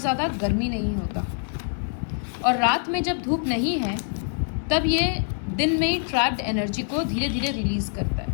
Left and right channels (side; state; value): right; silent; 58 dB below the other